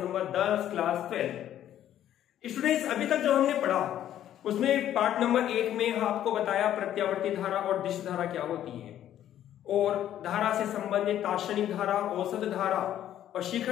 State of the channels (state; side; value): quieter; right; 11.5 dB